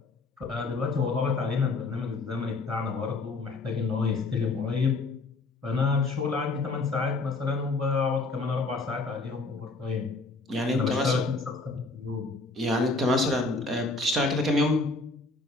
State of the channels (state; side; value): quieter; right; 3.5 dB